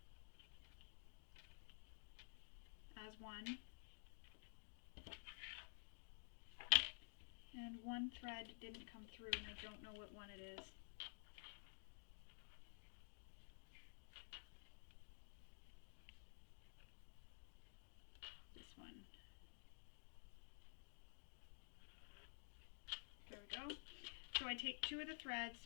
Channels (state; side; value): silent; right; digital silence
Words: as one. And one thread didn't come through, and I don't know what one it is. This one. There we go. So I take two of the threads,